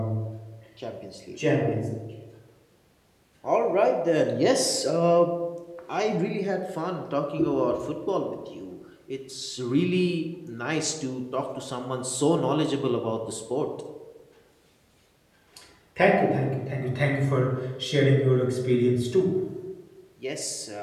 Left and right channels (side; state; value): both; identical; correlation 1.00